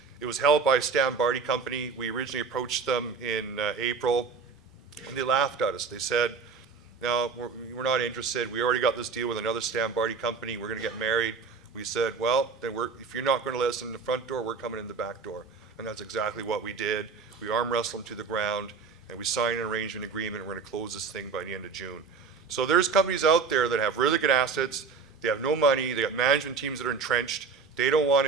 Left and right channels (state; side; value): quieter; left; 5.2 dB